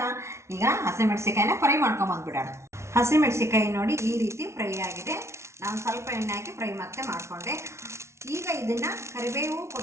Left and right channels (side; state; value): left; late; 0.13 ms